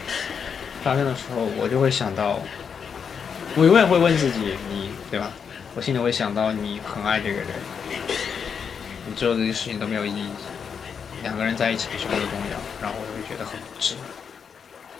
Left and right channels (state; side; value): quieter; right; 6.7 dB